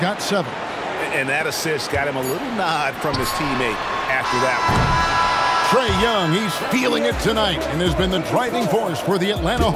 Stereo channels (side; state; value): both; identical; correlation 1.00